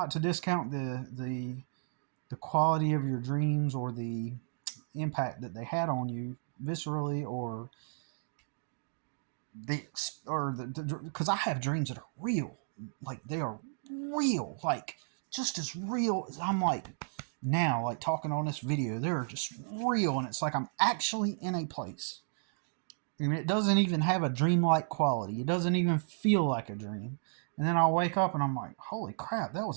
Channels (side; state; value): left; silent; digital silence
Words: to discount the quality of your dreams or the impact that they had on you viscerally, or because I have dreams that are real, like they are real, like just as real as I'm like now, like talking on this video. They're just real, and it's like I'm actually in a place, and it doesn't even have a dreamlike quality. It doesn't even feel like a dream. And then I'll wake up and I'm like, holy crap, that was